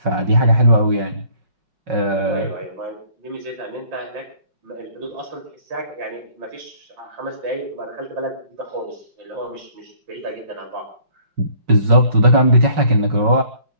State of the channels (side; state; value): left; late; 5.3 ms